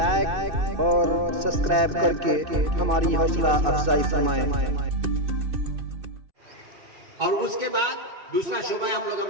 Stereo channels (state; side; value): late; left; 2.6 ms